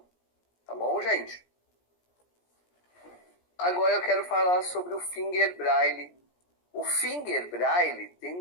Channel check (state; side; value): late; right; 17 ms